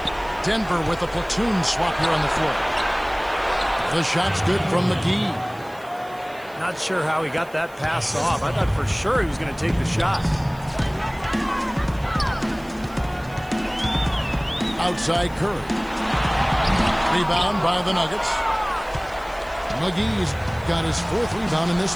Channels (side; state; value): right; noise; hiss, 25 dB below the sound